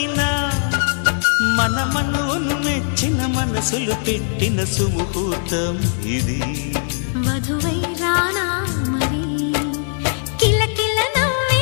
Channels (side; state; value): right; silent; 66 dB below the other